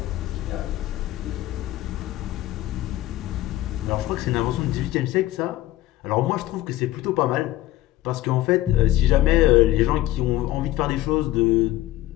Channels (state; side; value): quieter; right; 15.3 dB